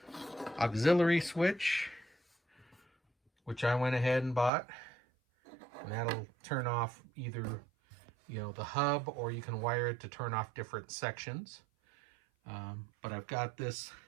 auxiliary switch, which I went ahead and bought, and that'll turn off either the hub, or you can wire it to turn off different sections. But I've got this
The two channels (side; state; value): left; drops out; at 4.5 s